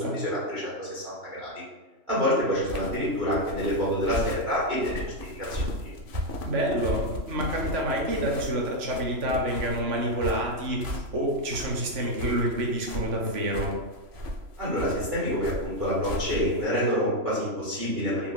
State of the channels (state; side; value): late; left; 3.0 ms